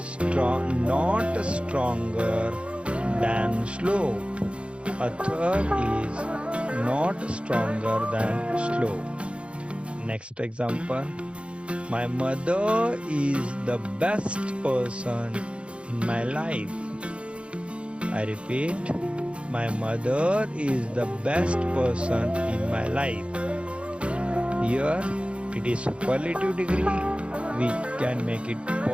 not stronger than slope. Atharva is not stronger than slope. Next example. My mother is the best person in my life. I repeat, my mother is the best person in my life. Here it is superlative degree. We can make it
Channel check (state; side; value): late; left; 0.059 ms